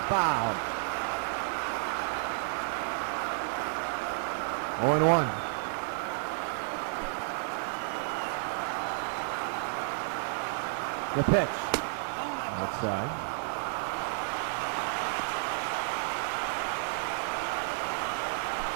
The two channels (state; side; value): silent; left; digital silence